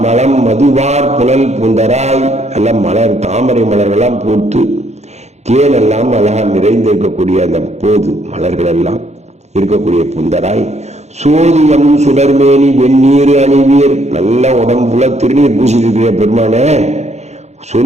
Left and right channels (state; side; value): late; left; 0.32 ms